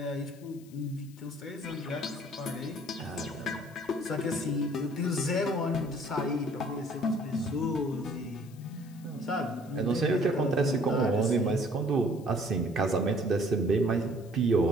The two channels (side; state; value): left; noise; hiss, 26 dB below the sound